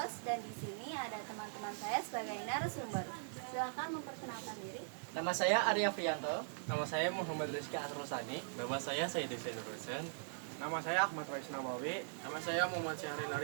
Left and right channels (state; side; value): silent; left; digital silence